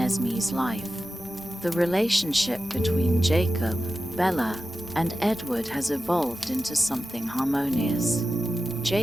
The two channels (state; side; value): normal; both; correlation 0.93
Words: life. The relationship between Jacob, Bella, and Edward has evolved into something harmonious.